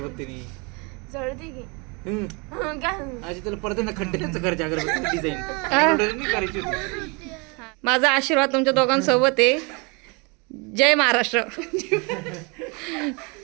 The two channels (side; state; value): left; quieter; 30.5 dB